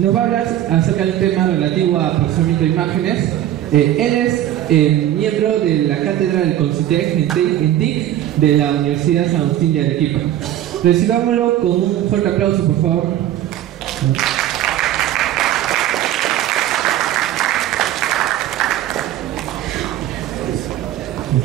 va a hablar acerca de un tema relativo a procesamiento de imágenes. Él es miembro de la cátedra del CONCITEC en TIC de la Universidad San Agustín de Arequipa. Recibámoslo con un fuerte aplauso, por favor.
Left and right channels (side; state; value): left; quieter; 12.4 dB